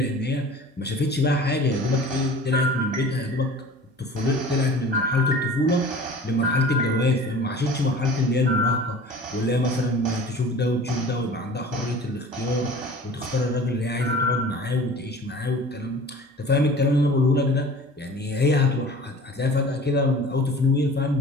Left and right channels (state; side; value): normal; both; correlation 0.42